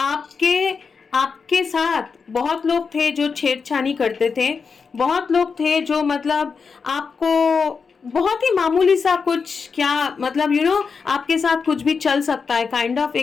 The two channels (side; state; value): right; quieter; 5.4 dB